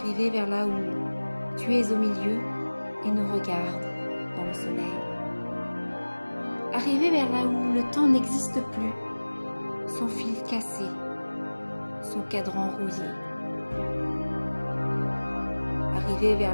vers là où tu es au milieu et nous regardes dans le soleil. Arriver vers là où le temps n'existe plus, son fil cassé, son cadran rouillé. Arriver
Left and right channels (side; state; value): both; inverted; correlation -1.00